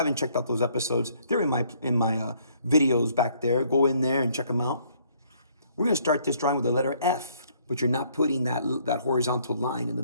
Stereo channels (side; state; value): both; inverted; correlation -0.64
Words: checked out those episodes, they're in my videos back there. Go in there and check them out. We're going to start this drawing with the letter F. But you're not putting that horizontal line in the